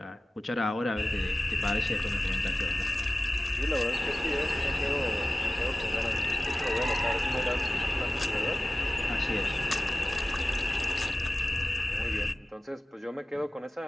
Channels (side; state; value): both; normal; correlation 0.96